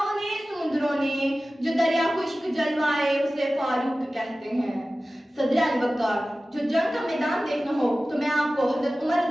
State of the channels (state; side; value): normal; both; correlation 0.96